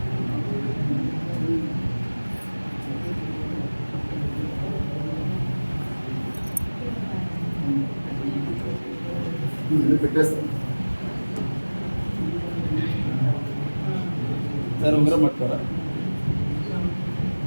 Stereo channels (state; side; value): inverted; both; correlation -1.00